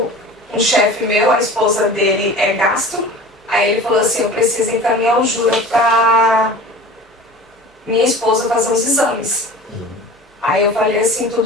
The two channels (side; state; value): both; normal; correlation 0.39